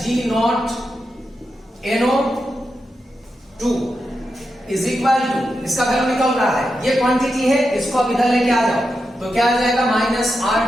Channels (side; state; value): both; normal; correlation 0.87